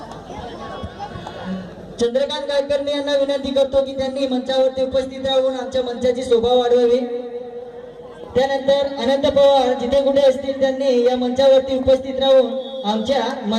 चंद्रकांत गायकर्णी यांना विनंती करतो की त्यांनी मंचावरती उपस्थित राहून आमच्या मंचाची शोभा वाढवावी. त्यानंतर अनंत पवार जिथे कुठे असतील त्यांनी या मंचावरती उपस्थित राहून आमच्या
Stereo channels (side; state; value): both; identical; correlation 1.00